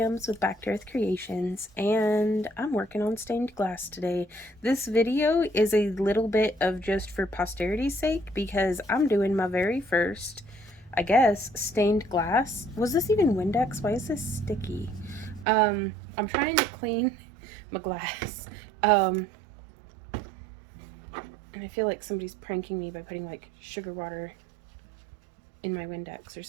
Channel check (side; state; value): left; drops out; at 15.5 s